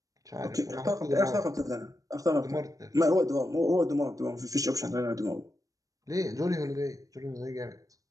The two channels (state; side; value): late; left; 0.17 ms